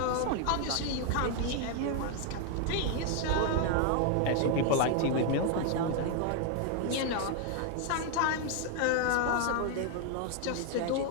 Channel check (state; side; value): different; both; correlation 0.00